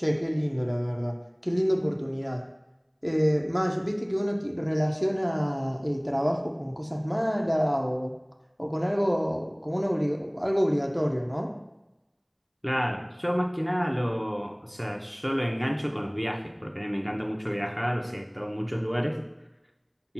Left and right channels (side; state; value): both; identical; correlation 1.00